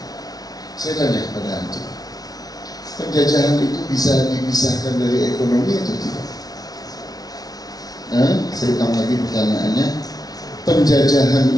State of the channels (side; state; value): right; late; 0.19 ms